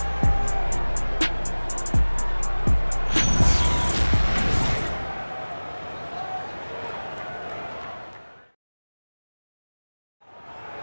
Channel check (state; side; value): inverted; both; correlation -1.00